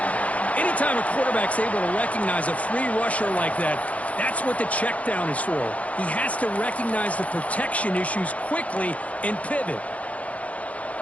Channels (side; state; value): right; late; 0.067 ms